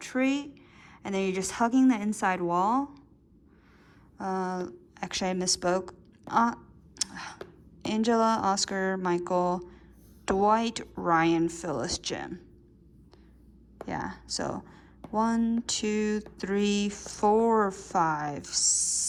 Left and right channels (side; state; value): both; identical; correlation 1.00